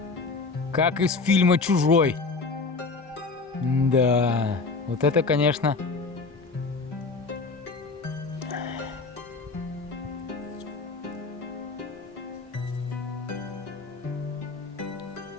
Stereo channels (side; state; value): right; quieter; 4.1 dB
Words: Как из фильма «Чужой». Да, вот это, конечно...